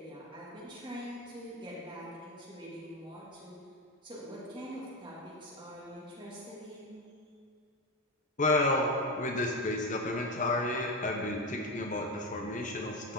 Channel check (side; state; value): both; normal; correlation 0.15